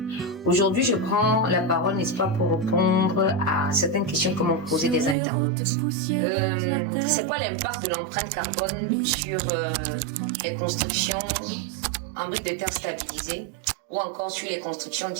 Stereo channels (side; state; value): left; drops out; at 5.2 s